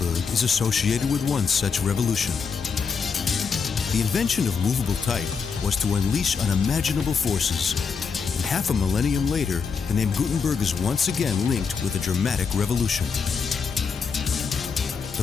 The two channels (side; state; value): right; quieter; 5.7 dB